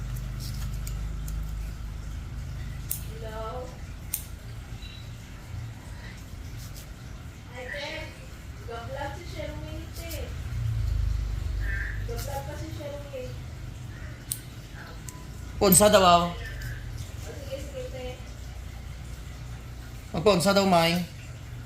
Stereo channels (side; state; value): both; identical; correlation 1.00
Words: Ponsa daw ako. Magponsa daw, May.